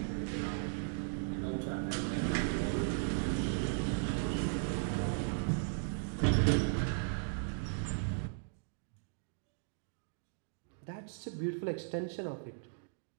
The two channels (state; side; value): silent; left; digital silence